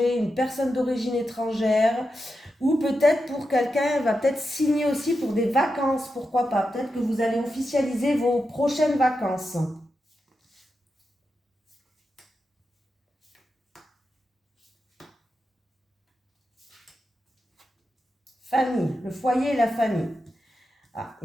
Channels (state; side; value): normal; both; correlation 0.88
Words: une personne d'origine étrangère, ou peut-être pour quelqu'un, va peut-être signer aussi pour des vacances, pourquoi pas. Peut-être que vous allez officialiser vos prochaines vacances. Famille, le foyer et la famille. Ah,